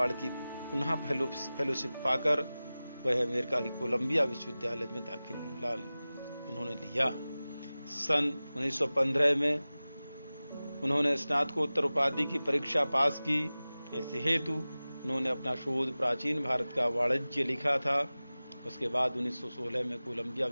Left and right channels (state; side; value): inverted; both; correlation -0.97